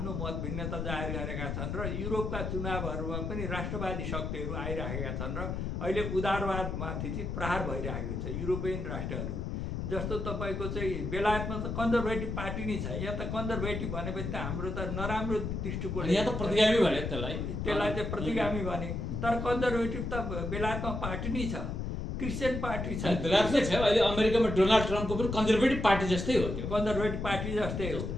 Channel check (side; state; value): left; noise; rumble, 3 dB below the sound